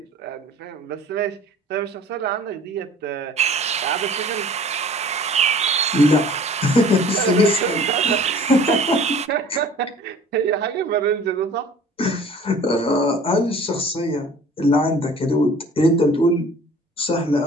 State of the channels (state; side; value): normal; both; correlation 0.48